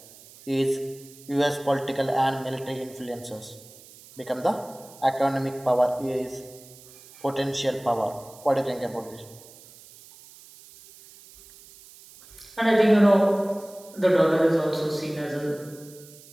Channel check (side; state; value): right; noise; hiss, 22 dB below the sound